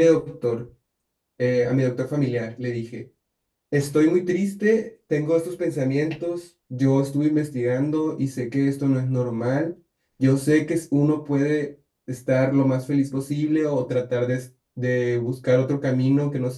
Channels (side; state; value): both; identical; correlation 1.00